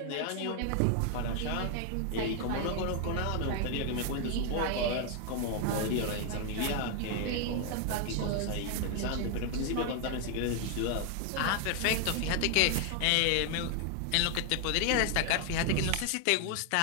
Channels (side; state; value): both; different; correlation 0.00